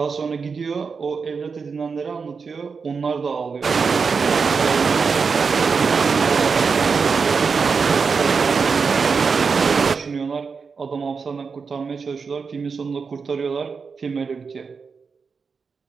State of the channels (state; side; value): quieter; left; 5.3 dB